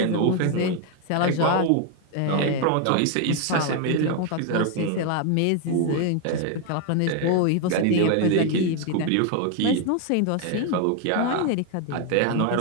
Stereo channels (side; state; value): both; different; correlation 0.01